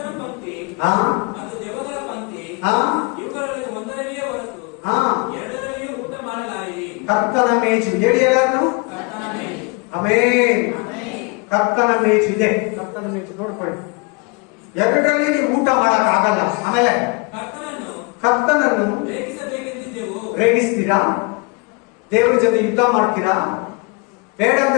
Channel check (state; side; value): quieter; right; 29.6 dB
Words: ಕರ್ತನ ಮೇಜು ಹೇಳಿ ಎಲ್ಲಾರು. ಆಮೇನ್. ಕರ್ತನ ಮೇಜು ಇದೆ, ಕರ್ತನ ಮೇಜು ನೋಡ್ಕೊಳ್ಳಿ. ಎರಡರಲ್ಲಿ ನೀವು ಊಟ ಮಾಡಕ್ ಆಗಲ್ಲ. ಆಮೇಲೆ ಕರ್ತನನ್ನು ರೇಗಿಸ್ತೀರಾ, ದೇವ್ರ ಜೊತೆ ಯುದ್ಧ ಮಾಡ್ತೀರಾ, ಬೇಡ